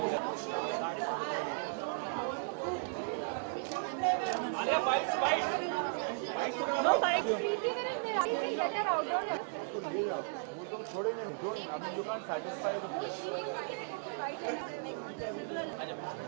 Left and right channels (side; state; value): left; silent; 54 dB below the other